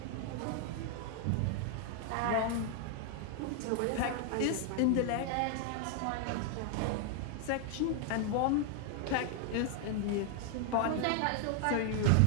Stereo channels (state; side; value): different; both; correlation 0.00